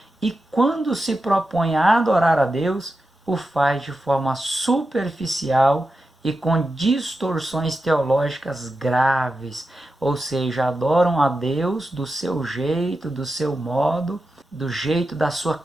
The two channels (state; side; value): normal; both; correlation 0.90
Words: e quando se propõe a adorar a Deus, o faz de forma superficial e com distorções teológicas graves, ou seja, adoram a Deus do seu jeito, do seu modo, do jeito da sua